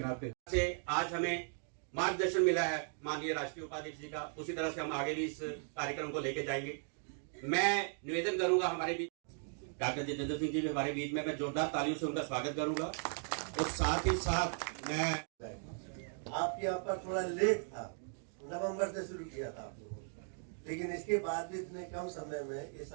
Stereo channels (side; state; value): left; silent; 53 dB below the other